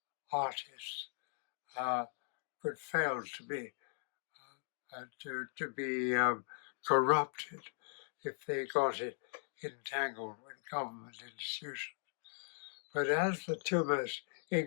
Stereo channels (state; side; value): silent; right; digital silence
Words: artists could fail to be corrupted if they got it entangled with government institutions. But as the two most